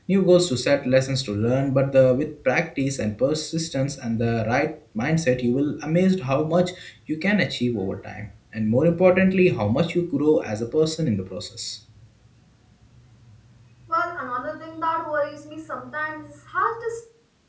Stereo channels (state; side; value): identical; both; correlation 1.00